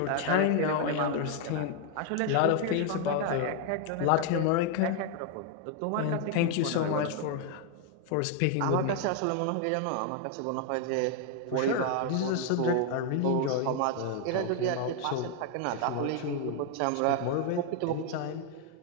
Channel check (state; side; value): different; both; correlation 0.00